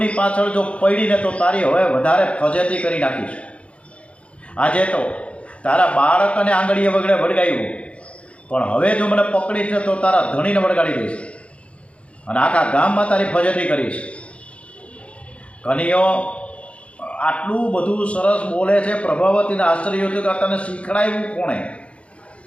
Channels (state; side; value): late; right; 0.061 ms